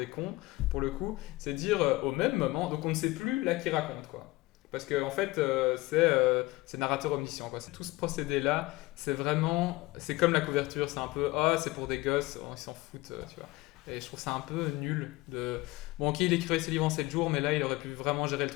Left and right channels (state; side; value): quieter; right; 20.3 dB